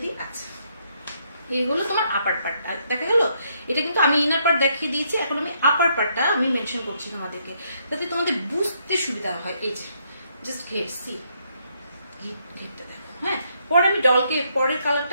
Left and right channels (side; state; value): both; inverted; correlation -0.73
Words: দিই। আচ্ছা, এই হলো তোমার আপার পার্টটা, দেখা গেল? এটা কিন্তু আমি ইনার পার্ট দেখিয়ে দিয়েছি, এখন আমি আপার পার্টটা আমি মেনশন করছি তোমাদেরকে, যাতে তোমাদের বুঝতে সুবিধা হয়। এই যে জাস্ট ঘের, সি ঘেরটা দেখো। হ্যাঁ, পরে আমি ডলকে, পরের কালারটা